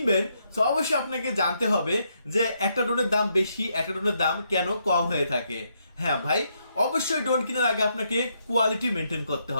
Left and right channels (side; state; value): both; inverted; correlation -0.77